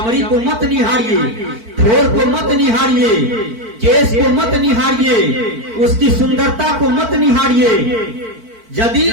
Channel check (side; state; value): left; late; 4.5 ms